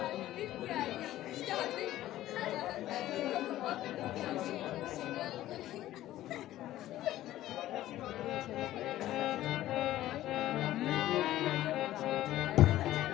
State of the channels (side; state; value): right; quieter; 14.3 dB